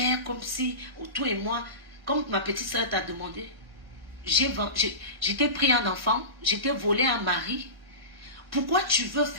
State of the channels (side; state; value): left; late; 1.6 ms